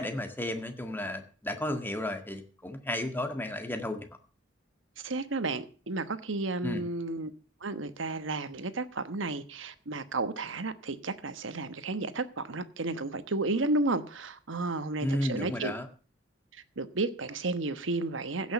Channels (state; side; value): normal; both; correlation 0.25